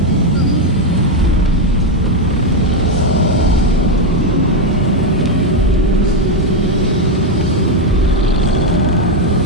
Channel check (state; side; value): normal; both; correlation 0.05